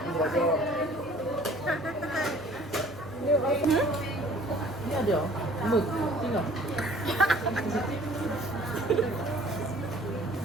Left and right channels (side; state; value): both; normal; correlation 0.52